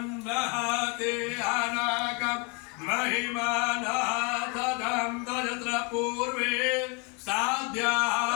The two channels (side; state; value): right; quieter; 32.7 dB